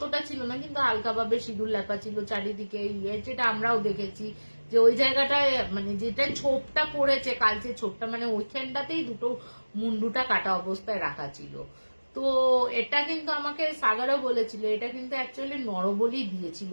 ছিল না, কিন্তু হালকাভাবে সিঁদুর লেপা ছিল চারিদিকে। যেটা আমরাও দেখেছি যে ওই জায়গাটায়, মানে যেটা ছোপটা পড়েছে, কালচে ছোপটা, মানে ওইখানটাতেই দুটো মুন্ডুটা কাটা অবস্থায় রাখা ছিল। তো এটা কিন্তু আমাকে সাগরও বলেছিল, এটা কিন্তু অ্যাকচুয়ালি নরবলি দিয়েছিল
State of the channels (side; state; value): both; inverted; correlation -1.00